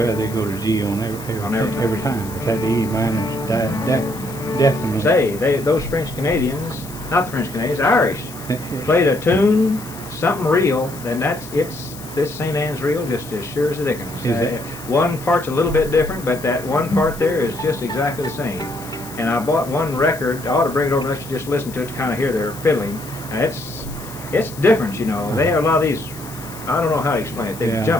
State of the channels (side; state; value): left; noise; hiss, 16 dB below the sound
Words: they go to G on every time. But that E minor, that definitely. Say, those French Canadians, not the French Canadians, Irish, played a tune, something real, then this St. Anne's reel just as sure as the dickens. Is it? One part's a little bit different, but that one part there is just exactly the same. And I bought one record. I ought to bring it over and let you just listen to it to kind of hear their fiddling. And it's different, you know. They have a lot of these. I don't know how to explain it. They Yeah.